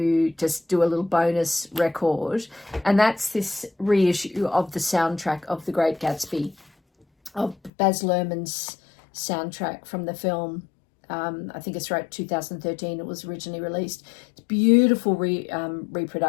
just do a little bonus record, and that's this reissue of the soundtrack of The Great Gatsby, of Baz Luhrmann's soundtrack from the film. I think it's right, 2013 it was originally released. It's beautiful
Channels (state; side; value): drops out; right; at 7.7 s